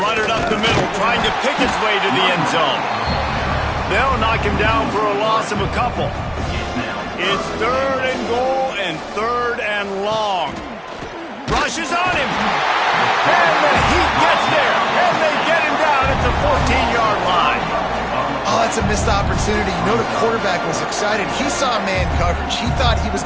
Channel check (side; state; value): both; identical; correlation 1.00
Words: run it up the middle, trying to pick its way to the end zone. They'll knock him down for a loss of a couple. It's 3rd and goal and 3rd and long. Rushes on him. And the Heat gets there. And they get him down at the 14-yard line. Oh, that's a missed opportunity. You know the quarterback was excited. He saw man coverage. He thought he was